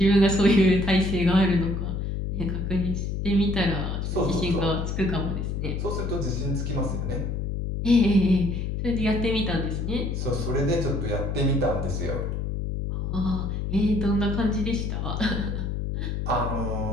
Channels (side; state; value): left; noise; hum, 2 dB below the sound